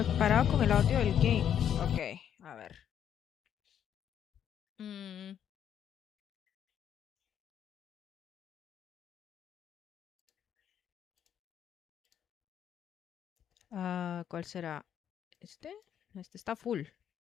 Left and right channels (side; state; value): right; quieter; 9.3 dB